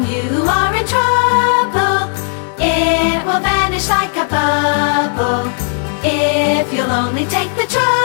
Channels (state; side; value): silent; right; 65 dB below the other